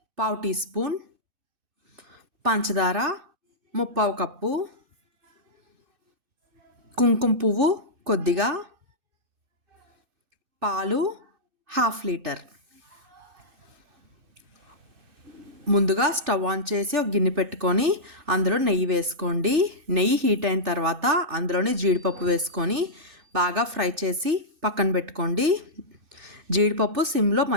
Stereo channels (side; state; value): left; late; 2.6 ms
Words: 1/2 టీ స్పూన్, పంచదార 1/2 కప్పు, కుంకుమ పువ్వు కొద్దిగా, పాలు 1/2 లీటర్. ముందుగా స్టవ్ ఆన్ చేసి ఒక గిన్నె పెట్టుకొని అందులో నెయ్యి వేసుకోండి. నెయ్యి హీట్ అయిన తర్వాత అందులోనే జీడిపప్పు వేసుకొని బాగా ఫ్రై చేసి పక్కన పెట్టుకోండి. జీడిపప్పు సిమ్లో